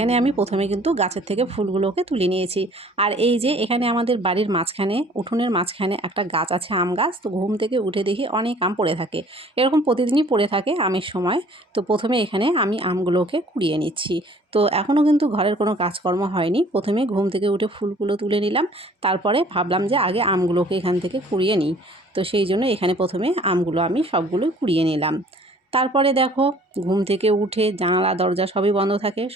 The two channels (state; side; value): normal; both; correlation 0.54